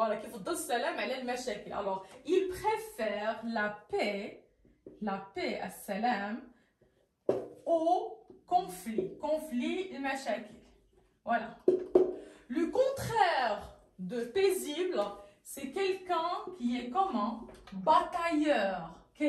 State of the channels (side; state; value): both; identical; correlation 1.00